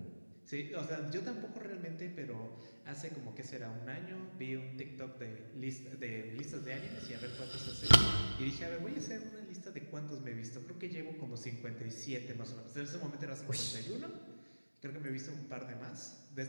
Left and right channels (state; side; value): inverted; both; correlation -1.00